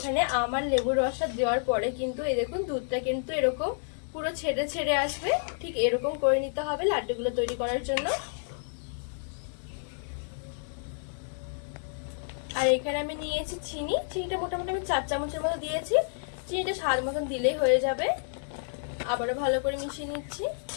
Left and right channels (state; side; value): silent; right; digital silence